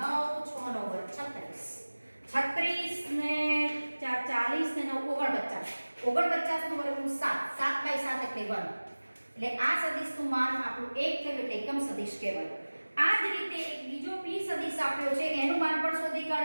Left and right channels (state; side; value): inverted; both; correlation -1.00